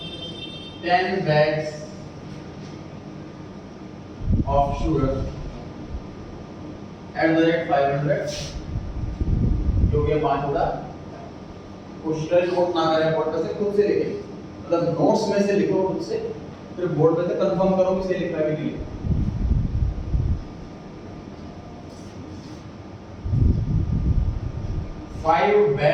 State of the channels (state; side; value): identical; both; correlation 1.00